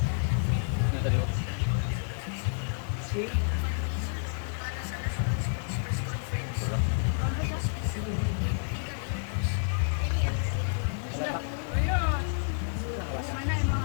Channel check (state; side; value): silent; right; digital silence